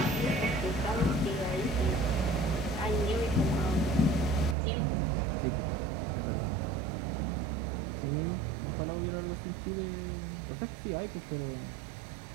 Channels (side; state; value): left; drops out; at 4.5 s